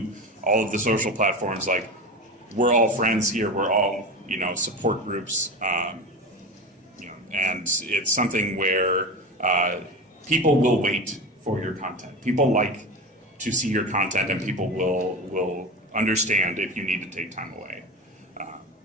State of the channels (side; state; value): both; normal; correlation 0.26